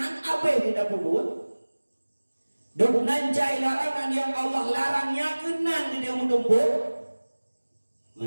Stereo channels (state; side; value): inverted; both; correlation -1.00